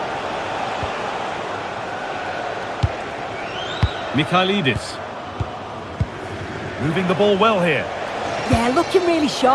Mikhailidis. Moving the ball well here. Yeah, looking really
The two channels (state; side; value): identical; both; correlation 1.00